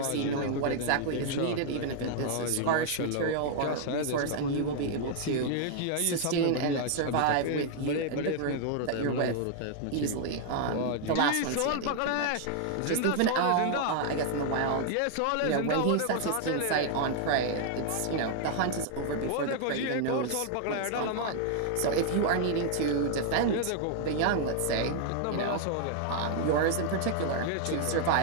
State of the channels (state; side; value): different; both; correlation 0.00